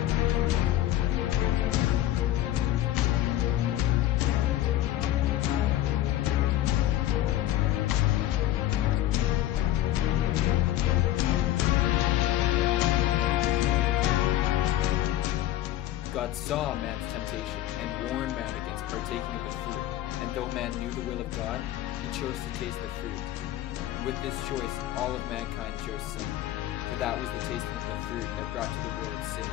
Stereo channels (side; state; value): right; quieter; 13.6 dB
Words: God saw man's temptation and warned man against partaking of the fruit. And though man knew the will of God, he chose to taste the fruit. And with this choice, all of mankind chose sin. For that was the tasting of the fruit that brought to the world sin.